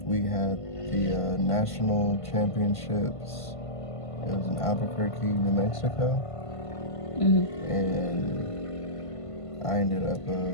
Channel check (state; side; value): late; right; 1.5 ms